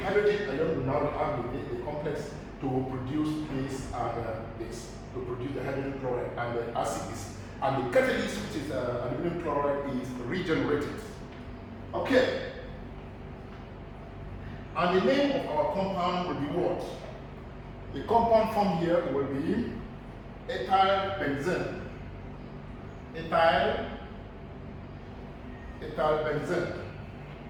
ion will now react with the complex to produce this and this, to produce the hydrogen chloride and the acid is, and the catalyst, which is aluminum chloride, is regenerated. Okay. And the name of our compound will be what? The compound form here will be ethyl benzene. Ethyl benzene.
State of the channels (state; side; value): identical; both; correlation 1.00